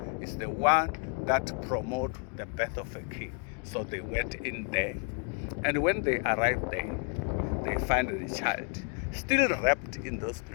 is the one that promotes the birth of a king. So they went in there. And when they arrived there, they found the child still wrapped in those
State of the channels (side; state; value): right; quieter; 38.3 dB